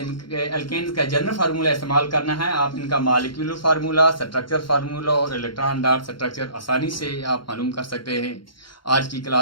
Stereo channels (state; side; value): late; right; 0.73 ms